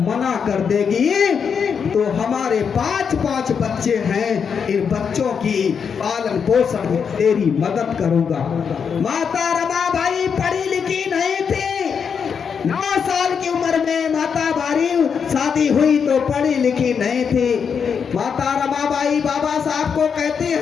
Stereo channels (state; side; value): quieter; right; 6.6 dB